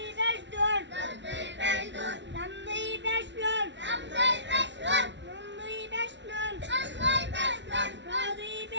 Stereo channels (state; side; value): late; left; 0.52 ms